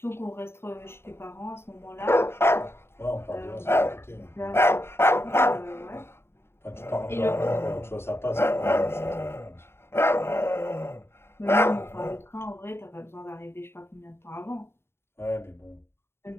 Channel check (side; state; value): right; late; 0.12 ms